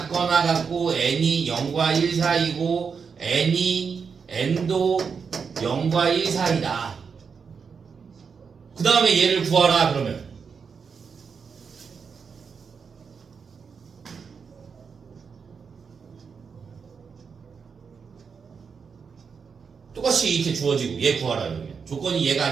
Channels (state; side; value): quieter; left; 5.9 dB